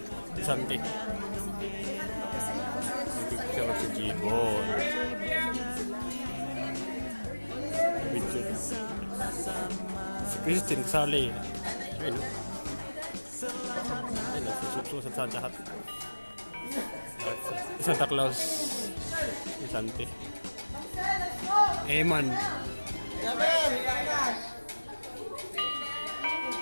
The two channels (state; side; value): inverted; both; correlation -1.00